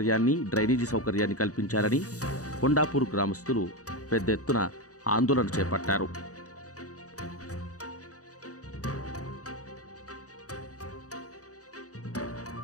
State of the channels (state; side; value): late; right; 0.67 ms